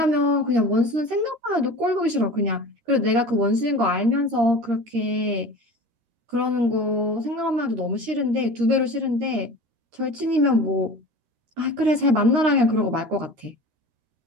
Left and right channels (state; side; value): late; left; 13 ms